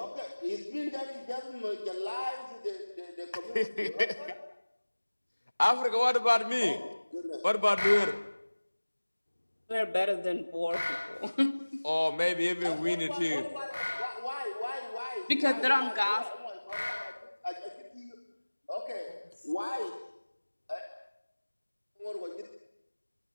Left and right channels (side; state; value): both; inverted; correlation -1.00